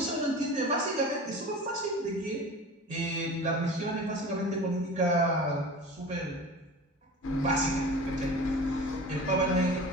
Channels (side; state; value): both; normal; correlation 0.36